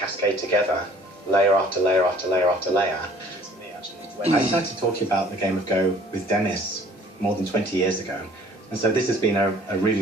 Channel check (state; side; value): normal; both; correlation 0.54